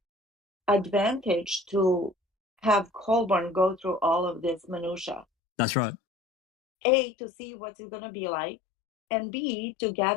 advantage to have Colborn go through all of this minutia. That's right. A, to see what's it gonna be like, and B, to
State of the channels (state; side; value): drops out; right; at 5.2 s